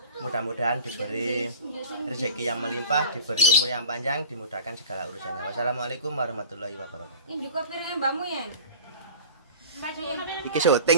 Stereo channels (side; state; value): both; inverted; correlation -0.39